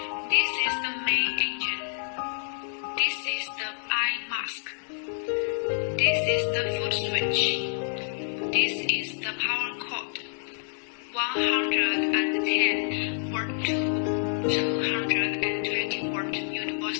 This is the main engine. This is the eye mask. This is the foot switch. This is the power cord. 110 volt to 220 volt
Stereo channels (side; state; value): right; silent; digital silence